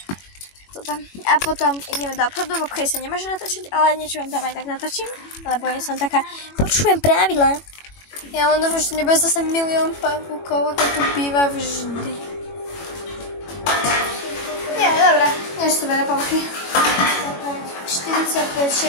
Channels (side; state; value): right; late; 21 ms